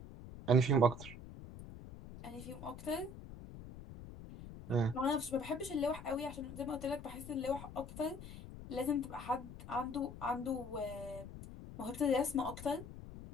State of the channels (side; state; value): left; noise; rumble, 12 dB below the sound